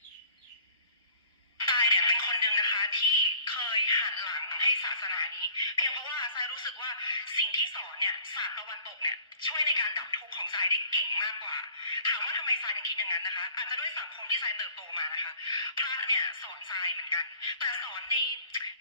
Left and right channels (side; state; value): both; inverted; correlation -0.53